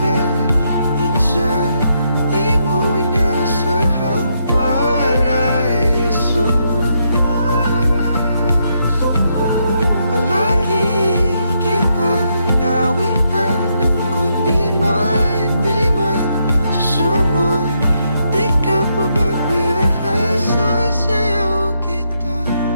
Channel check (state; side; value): inverted; both; correlation -0.78